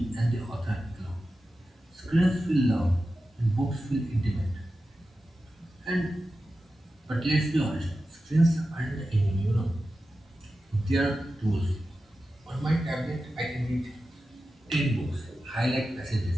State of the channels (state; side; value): normal; both; correlation 0.92